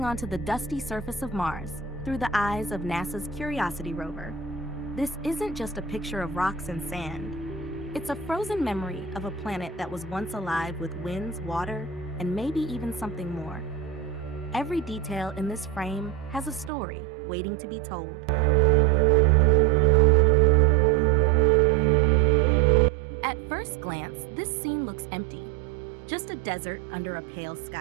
onto the dusty surface of Mars through the eyes of NASA's Curiosity rover. This isn't just a picture of rocks and sand. It's a frozen memory of a planet that was once alive with winds, water, and maybe even something more. Every detail in this frame has a story waiting to be told. At first glance, this scene looks empty, just a desert under a pale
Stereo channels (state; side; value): drops out; left; at 16.7 s